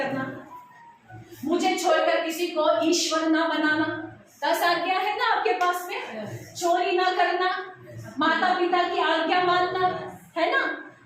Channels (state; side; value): identical; both; correlation 1.00